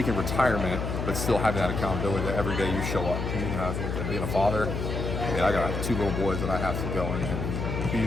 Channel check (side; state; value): left; noise; hum, 3 dB below the sound